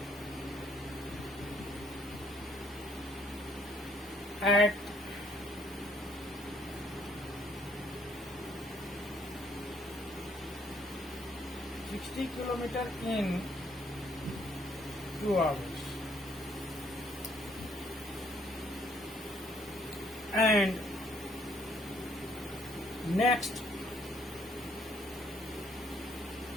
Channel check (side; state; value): both; normal; correlation 0.66